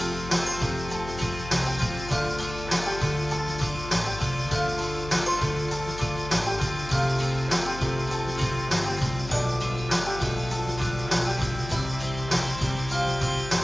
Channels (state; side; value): noise; left; hum, 11 dB below the sound